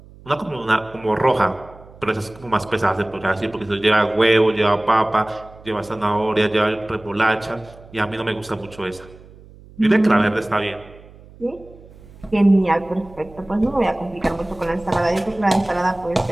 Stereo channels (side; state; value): right; noise; hum, 22 dB below the sound